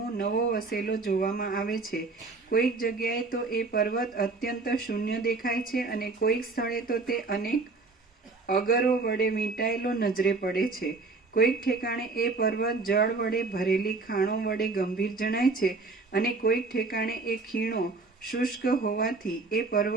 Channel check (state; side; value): quieter; left; 3.8 dB